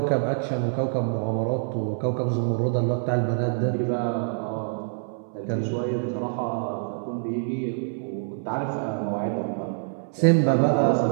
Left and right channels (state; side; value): silent; left; 61 dB below the other